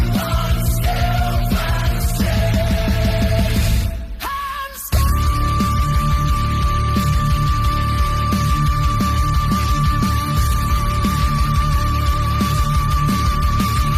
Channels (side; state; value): both; identical; correlation 1.00